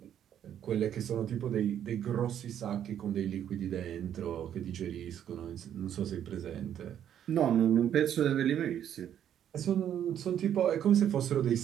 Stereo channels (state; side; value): quieter; left; 9.9 dB